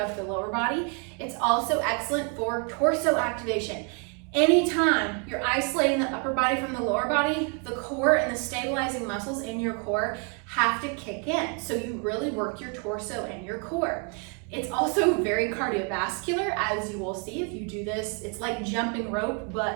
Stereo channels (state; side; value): quieter; left; 37.5 dB